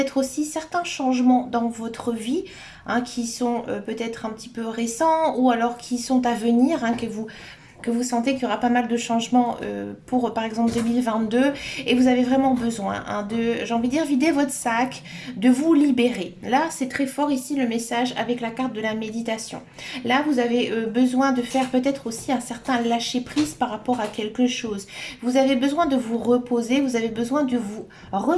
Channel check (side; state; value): both; identical; correlation 1.00